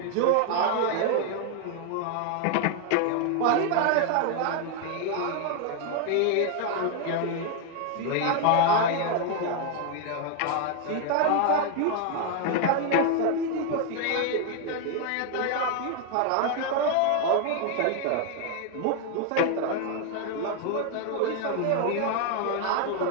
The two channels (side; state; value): both; different; correlation 0.01